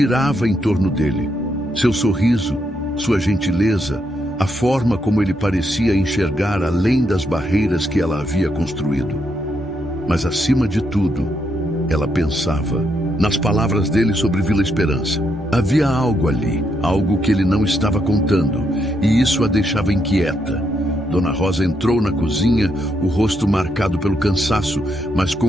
em torno dele. Seu sorriso, sua gentileza, a forma como ele parecia enxergar além das barreiras que ela havia construído. Mas, acima de tudo, ela pensava nas palavras dele sobre Vila Esperança. Havia algo ali, algo que ele não estava contando, e isso a deixava inquieta. Dona Rosa entrou na cozinha, o rosto marcado pelo cansaço, mas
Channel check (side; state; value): both; normal; correlation 0.78